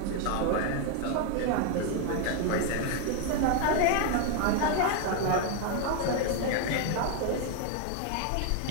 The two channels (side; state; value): both; different; correlation 0.01